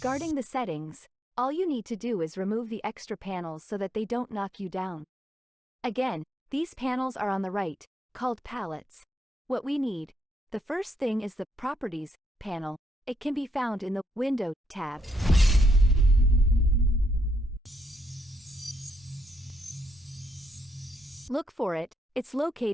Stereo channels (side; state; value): both; normal; correlation 0.76